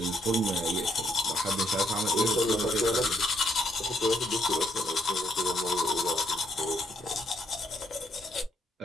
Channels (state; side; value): normal; both; correlation 0.72